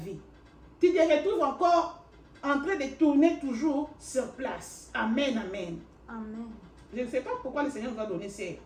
Tu te retrouves encore en train de tourner toujours sur place. Amen, amen. Amen. Je ne sais pas pourquoi le Seigneur nous a donné ces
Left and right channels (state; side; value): identical; both; correlation 1.00